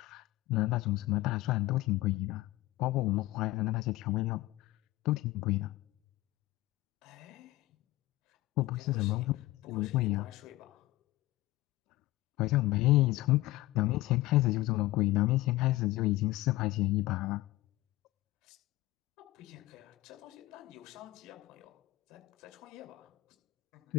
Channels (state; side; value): quieter; right; 18.1 dB